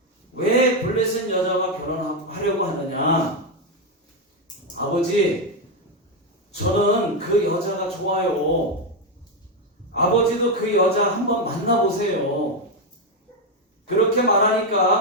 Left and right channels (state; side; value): normal; both; correlation 0.06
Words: 왜 블레셋 여자와 결혼하려고 하느냐? 아버지, 저는 그 여자가 좋아요. 아버지도 그 여자 한번 만나보세요. 그렇게